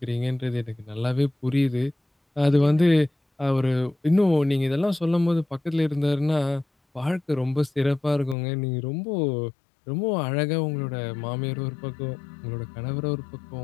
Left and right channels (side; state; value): right; drops out; at 8.3 s